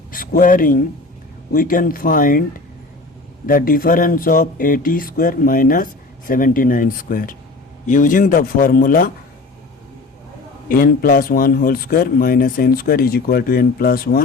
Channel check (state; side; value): quieter; right; 3.4 dB